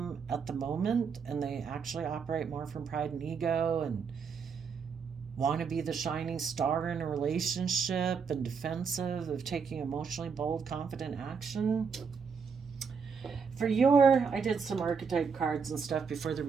at the moment, and they actually operate more from pride and ego and want to be the shining star in a relationship and defensive of taking emotionally bold, confident action. I did some archetype cards and stuff before the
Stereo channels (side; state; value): left; quieter; 5.9 dB